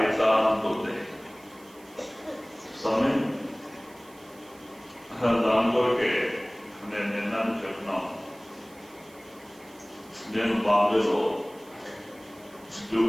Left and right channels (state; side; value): noise; right; hiss, 25 dB below the sound